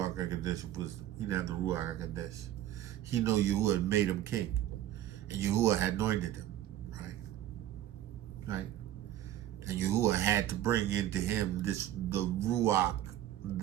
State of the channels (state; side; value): quieter; left; 12.7 dB